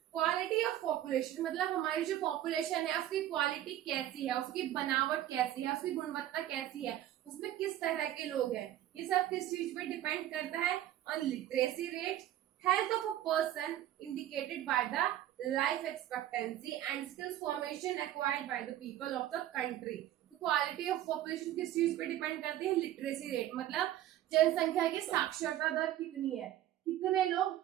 Quality of population मतलब हमारी जो पॉपुलेशन है उसकी क्वालिटी कैसी है, उसकी बनावट कैसी है, उसकी गुणवत्ता कैसी है, उसमें किस तरह के लोग हैं, ये सब किस चीज पे डिपेंड करता है? On literacy rate, health of a person indicated by the life expectancy and skills formation acquired by the people of the country। तो क्वालिटी ऑफ पॉपुलेशन किस चीज पे डिपेंड करती है? लिटरेसी रेट, मतलब जनसंख्या की साक्षरता दर कितनी है, कितने लोग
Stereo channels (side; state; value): left; quieter; 12.7 dB